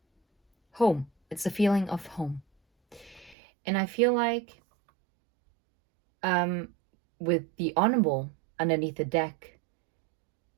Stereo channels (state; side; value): drops out; left; at 3.4 s